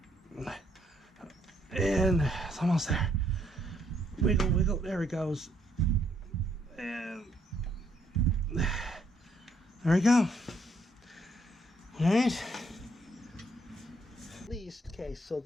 And it's almost there. Wiggle, wiggle, there it goes. And there we go. Alright. At least, okay, so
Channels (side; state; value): both; normal; correlation 0.71